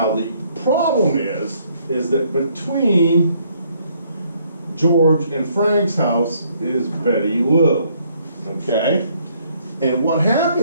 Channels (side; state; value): both; inverted; correlation -0.67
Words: the problem is that between George and Frank's house is Betty Lou, okay? And what